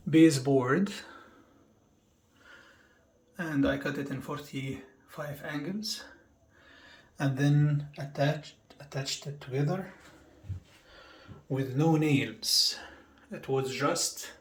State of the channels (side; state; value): both; identical; correlation 1.00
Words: baseboard, and I cut it in 45 angles, and then attached it together with no nails. It was just